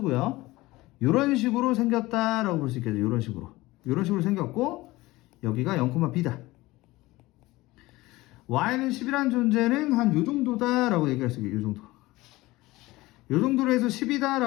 이런 식으로 생겼다라고 볼 수 있겠죠. 이런 식으로 생겼고, 여기가 0,b다. y는 10이라는 존재는 한 요 정도다라고 얘기할 수 있겠죠. 요 정도로 해서 10이다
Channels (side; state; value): right; quieter; 19.5 dB